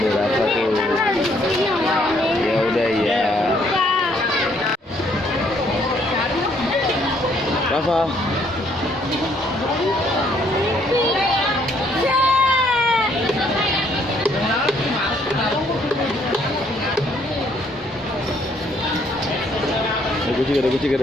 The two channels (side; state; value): both; normal; correlation 0.67